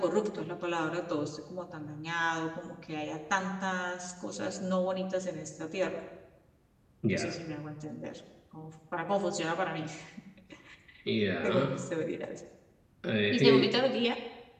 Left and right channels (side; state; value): both; identical; correlation 1.00